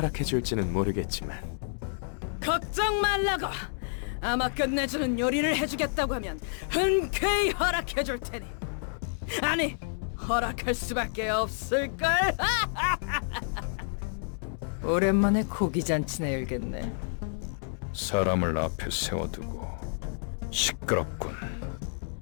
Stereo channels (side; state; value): right; silent; digital silence